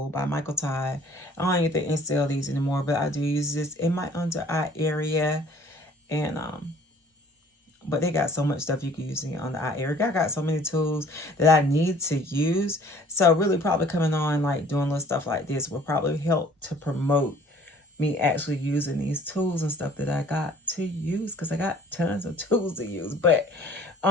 by Michael Todd. I don't even think they sell these anymore, but I do use this in my under eye area. And But they got so much stuff you can use on the eye area. I got so many tools that I need to use. So really probably coming on, like doing little stuff like this will probably help to promote me actually using these tools and stuff that I got to use, because I got tons of tools to use. But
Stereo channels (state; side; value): normal; both; correlation 0.53